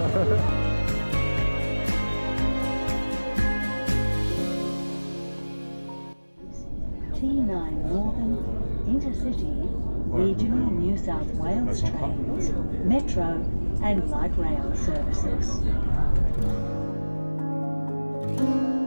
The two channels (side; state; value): both; inverted; correlation -1.00